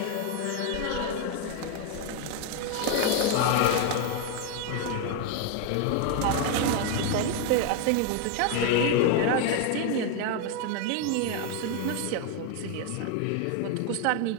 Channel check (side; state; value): both; different; correlation 0.01